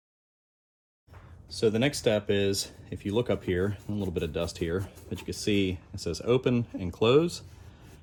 So the next step is, if you look up here, a little bit of dust here, but you can see it says open and close,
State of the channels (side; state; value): both; identical; correlation 1.00